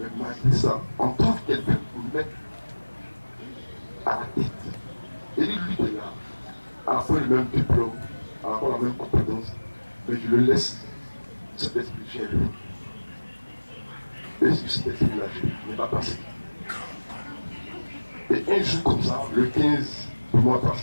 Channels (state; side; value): inverted; both; correlation -1.00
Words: malgré ça, on trouve quelqu'un pour me mettre à la tête. Et lui est là, à la fois le même diplôme, à la fois la même compétence, mais je le laisse, cet esprit gérer. Et cet esprit-là, je n'ai pas passé. Et un jour comme ça, le 15 du mois